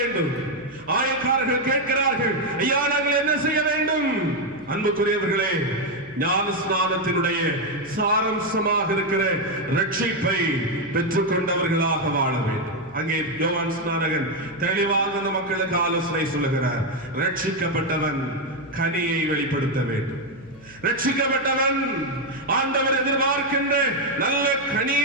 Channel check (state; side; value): noise; left; hum, 23 dB below the sound